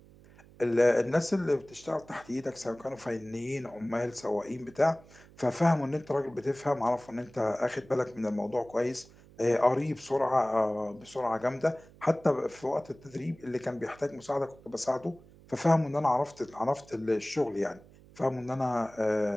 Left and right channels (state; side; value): noise; right; hum, 24 dB below the sound